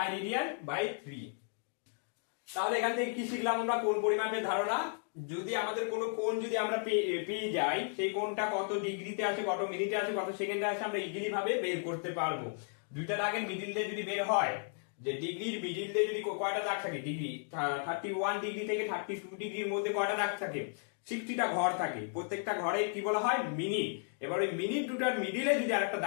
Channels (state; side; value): silent; right; 55 dB below the other